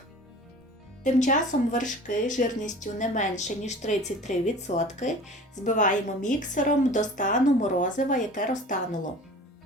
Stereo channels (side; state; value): both; normal; correlation 0.42